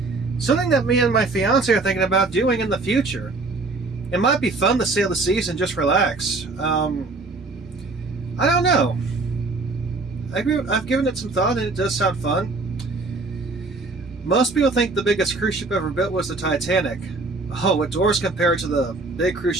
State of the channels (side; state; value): left; quieter; 3.5 dB